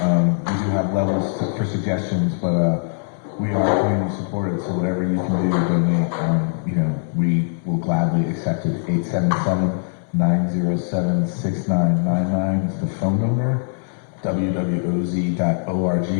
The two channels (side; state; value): right; silent; 63 dB below the other